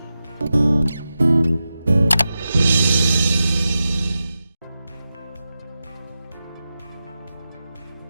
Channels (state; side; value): inverted; both; correlation -0.92